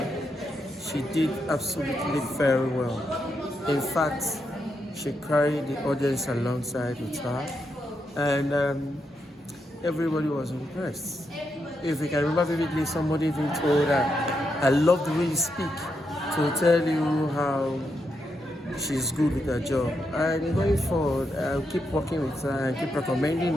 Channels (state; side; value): normal; both; correlation 0.82